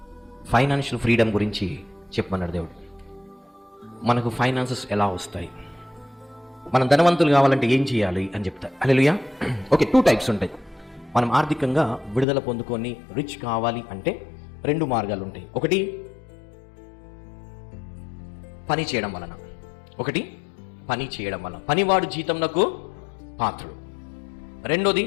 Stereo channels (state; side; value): drops out; right; at 12.2 s